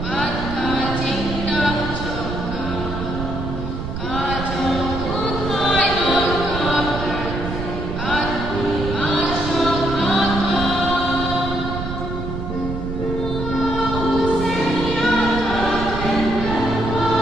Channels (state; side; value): noise; right; rumble, 5 dB below the sound